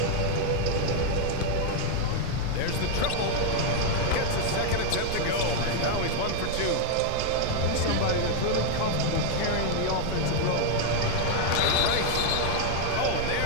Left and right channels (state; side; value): different; both; correlation 0.00